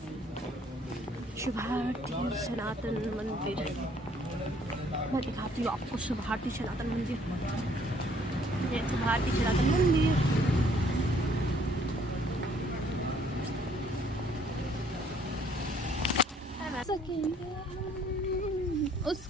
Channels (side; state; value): both; normal; correlation 0.62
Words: शुभारती सनातन मंदिर। मैं दिखाती हूँ आपको शुभारती सनातन मंदिर। ये शुभारती सनातन मंदिर।